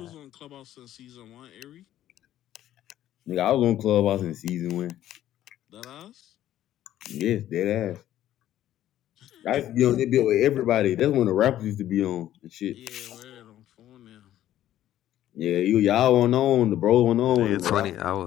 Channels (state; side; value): quieter; right; 12.6 dB